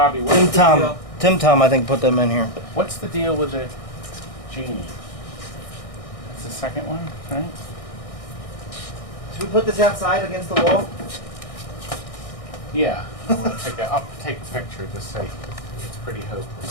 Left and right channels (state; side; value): late; right; 1.6 ms